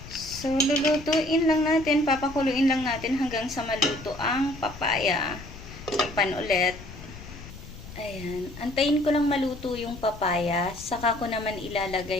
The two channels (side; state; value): left; noise; rumble, 15 dB below the sound